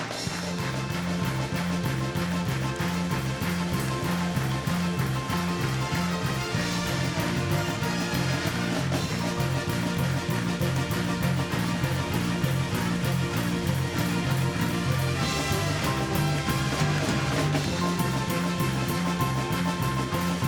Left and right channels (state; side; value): identical; both; correlation 1.00